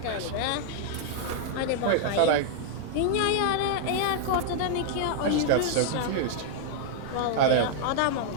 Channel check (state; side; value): different; both; correlation -0.01